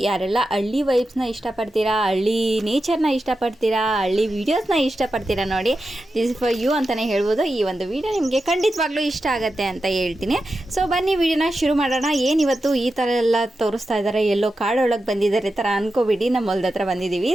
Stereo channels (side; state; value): both; normal; correlation 0.90